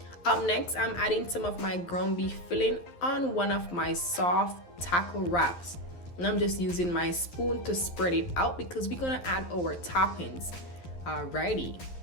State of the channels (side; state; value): right; late; 11 ms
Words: Up next, I'm adding some of my ground beef filling on one of my soft taco wraps. And I'm just using my spoon to spread it out because we're gonna add our toppings. Alrighty.